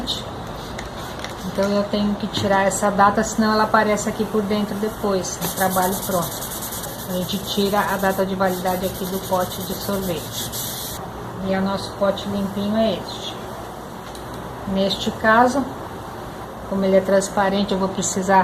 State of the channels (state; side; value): identical; both; correlation 1.00